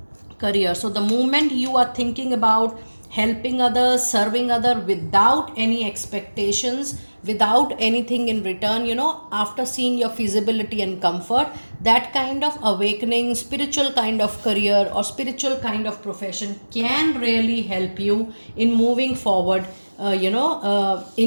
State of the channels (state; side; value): inverted; both; correlation -1.00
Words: So the moment you are thinking about helping others, serving others without any expectations, without anything in return, after seeing your feasibility and comfort, that kind of awakening, spiritual kind of career or spiritual kind of profession can really help you in moving forward,